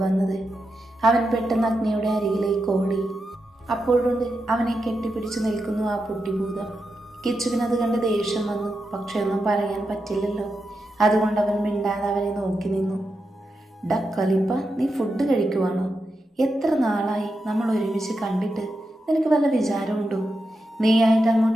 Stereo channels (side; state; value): both; normal; correlation 0.87